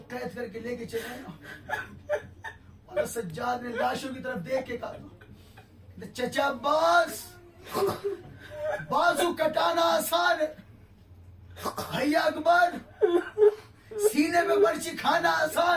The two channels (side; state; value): both; identical; correlation 1.00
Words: قید کر کے لے کے چلے نا, مولا سجاد نے لاشوں کی طرف دیکھ کے کہا چچا عباس بازو کٹانا آسان ہے، بھیا اکبر سینے پہ برچی کھانا